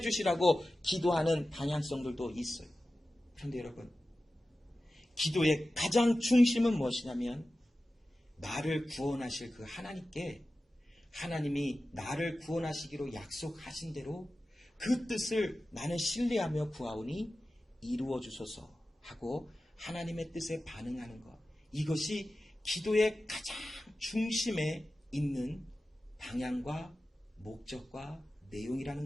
기도하는 방향성들도 있어요. 그런데 여러분, 기도의 가장 중심은 무엇이냐면, 나를 구원하실 그 하나님께, 하나님이 나를 구원하시기로 약속하신 대로 그 뜻을 나는 신뢰하며 구하오니 이루어 주소서 하고 하나님의 뜻에 반응하는 것, 이것이 기도의 가장 중심에 있는 방향과 목적과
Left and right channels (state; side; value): normal; both; correlation 0.94